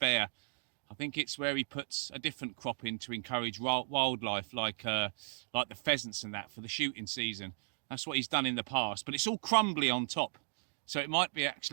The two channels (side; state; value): left; silent; digital silence